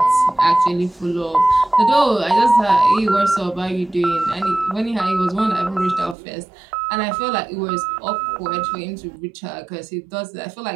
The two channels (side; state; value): left; drops out; at 6.2 s